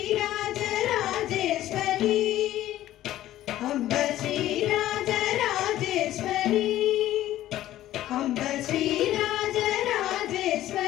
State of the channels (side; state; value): right; quieter; 13.8 dB